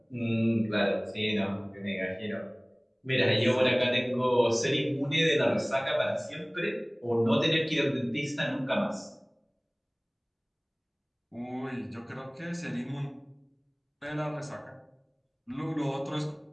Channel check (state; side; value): identical; both; correlation 1.00